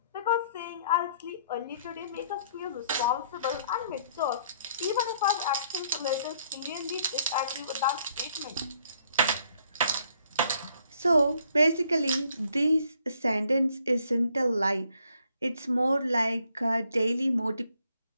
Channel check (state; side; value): inverted; both; correlation -0.66